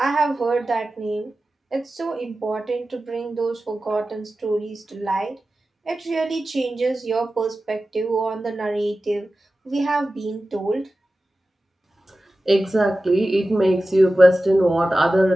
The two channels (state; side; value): normal; both; correlation 0.95